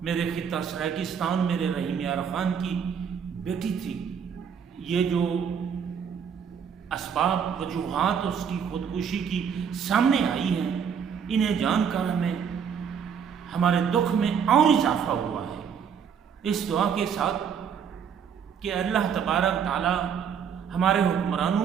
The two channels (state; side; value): quieter; left; 7.4 dB